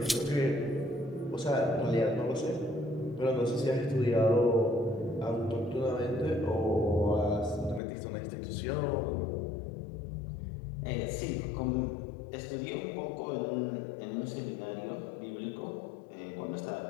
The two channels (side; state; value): right; drops out; at 7.8 s